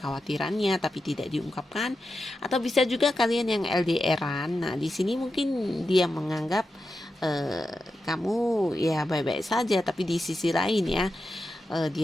tapi tidak diungkapkan, atau bisa juga kalian yang LDRan. Nah, di sini mungkin dia menganggap kamu ya baik-baik saja, tapi di sisi lain ya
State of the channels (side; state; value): both; normal; correlation 0.89